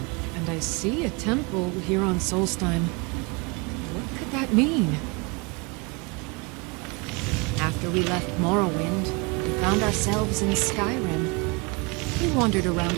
and I see a temple here on Solstheim. What could that mean? After we left Morrowind, we found ourselves in Skyrim. We wandered around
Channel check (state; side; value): quieter; left; 28.9 dB